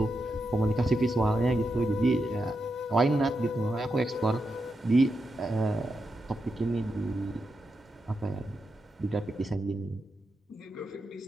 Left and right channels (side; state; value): both; normal; correlation 0.86